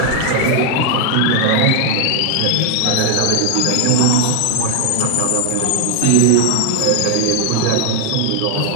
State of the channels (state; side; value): different; both; correlation 0.00